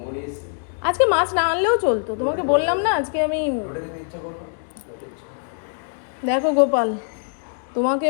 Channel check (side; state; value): right; silent; digital silence